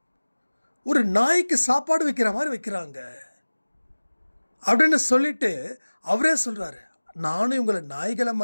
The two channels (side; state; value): both; inverted; correlation -1.00